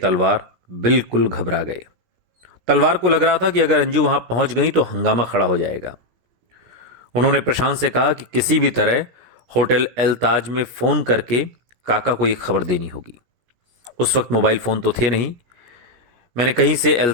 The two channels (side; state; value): left; late; 17 ms